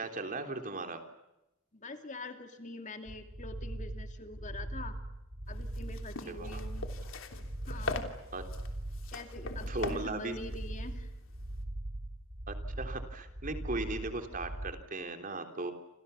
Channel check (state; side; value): normal; both; correlation 0.40